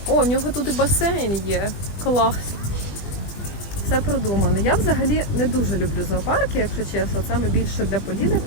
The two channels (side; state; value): right; late; 20 ms